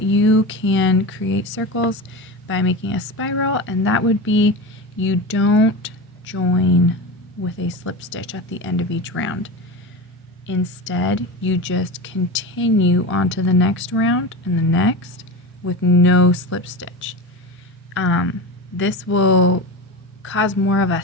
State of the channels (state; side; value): normal; both; correlation 0.25